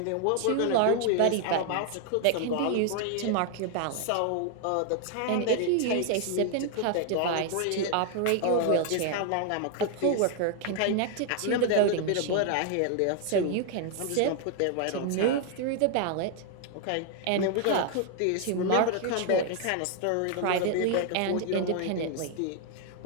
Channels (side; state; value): both; different; correlation 0.00